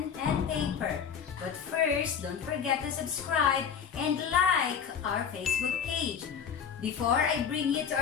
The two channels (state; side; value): quieter; right; 7.4 dB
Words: and paper. But first, don't forget to subscribe and like our Facebook page. Before I bring you to